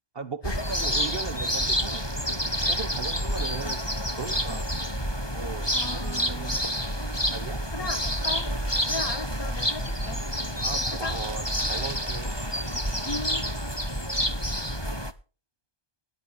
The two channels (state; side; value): late; right; 1.2 ms